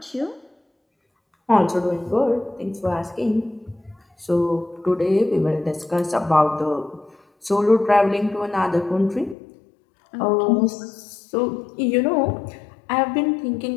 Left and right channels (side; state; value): right; drops out; at 9.3 s